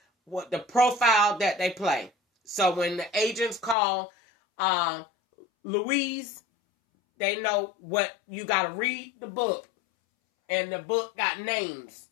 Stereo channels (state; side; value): drops out; right; at 3.8 s